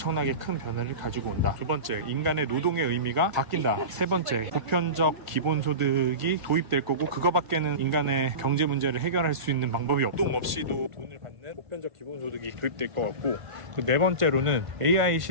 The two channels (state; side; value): late; left; 1.5 ms